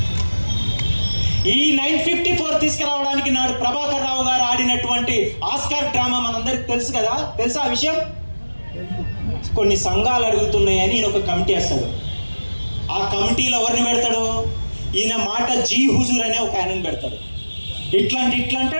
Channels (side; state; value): both; inverted; correlation -1.00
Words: ఈ 954 తీసుకురావడానికి నాడు ప్రభాకర్ రావు గారు ఆడినటువంటి ఆస్కార్ డ్రామా మనందరికి తెలుసు కదా. తెలుసా ఆ విషయం? కొన్ని సంఘాలు అడుగుతున్నాయని ఈయన ఒక కమిటీ వేస్తాడు. ఆ కమిటీలో ఎవరిని పెడతాడు? ఈయన మాట జీ హుజూర్ అనే ఒక ఆయనని పెడతాడు. ఇట్లా